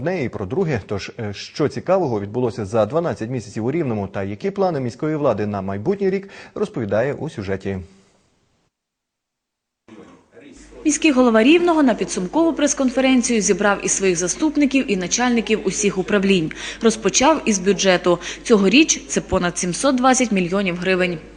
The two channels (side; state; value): both; identical; correlation 1.00